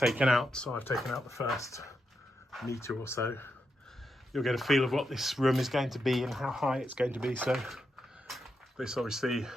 out, so I've taken out the first metre or so, you'll get a feel of what this room is going to be and how high it's going to be. So this obviously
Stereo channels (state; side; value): normal; both; correlation 0.84